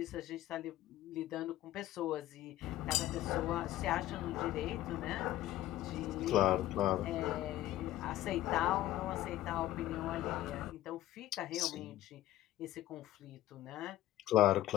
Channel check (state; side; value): quieter; right; 14.4 dB